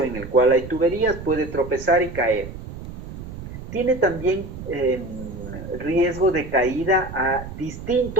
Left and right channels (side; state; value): right; noise; rumble, 11 dB below the sound